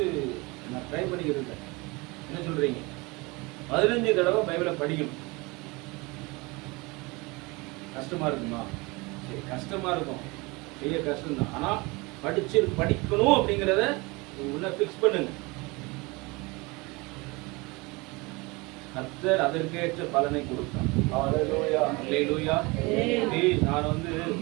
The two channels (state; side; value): quieter; left; 25.3 dB